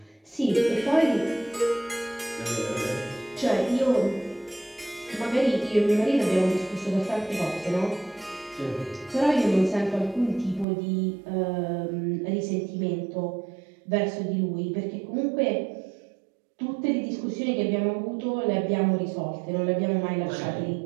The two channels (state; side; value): drops out; left; at 10.7 s